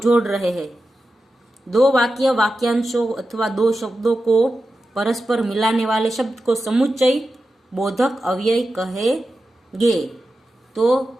रहे हैं। दो वाक्य, वाक्यांशों अथवा दो शब्दों को परस्पर मिलाने वाले शब्द को समुच्चय बोधक अव्यय कहेंगे। तो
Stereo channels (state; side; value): normal; both; correlation 0.91